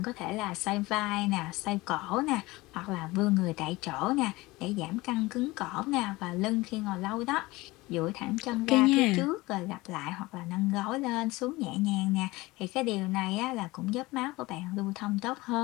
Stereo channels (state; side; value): quieter; right; 20.9 dB